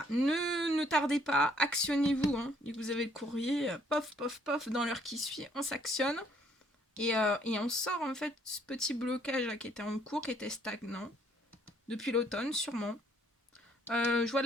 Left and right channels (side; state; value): both; normal; correlation 0.65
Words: ne tardez pas, actionnez-vous. Hein. Dès que vous avez le courrier, pof, pof, pof, dans l'heure qui suit, on s'actionne. Et on sort en fait ce petit blocage là, qui était en cours, qui était stagnant. Depuis l'automne, sûrement. Je vois